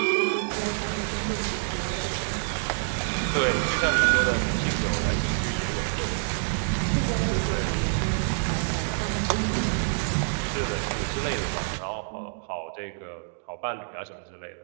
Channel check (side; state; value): left; silent; digital silence